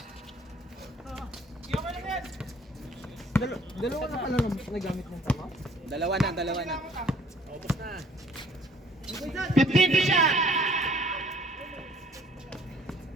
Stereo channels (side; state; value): both; normal; correlation 0.57